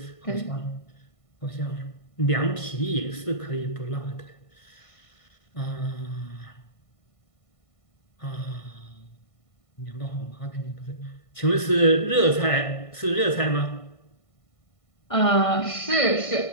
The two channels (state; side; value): late; right; 1.5 ms